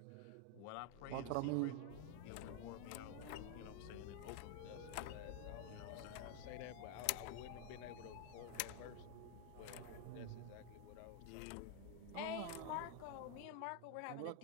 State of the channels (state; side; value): different; both; correlation 0.00